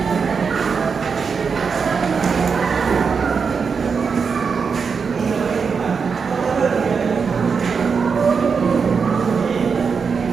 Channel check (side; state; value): left; quieter; 5.7 dB